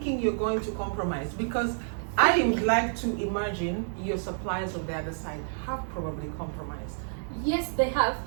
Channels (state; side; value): silent; left; digital silence